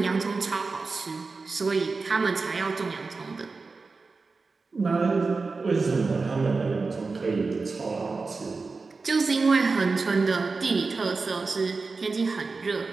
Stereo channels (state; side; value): quieter; left; 4.1 dB